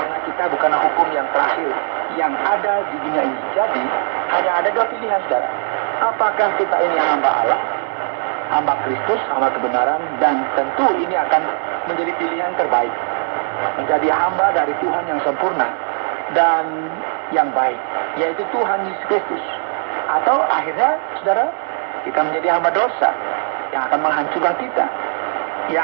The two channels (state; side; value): silent; left; 61 dB below the other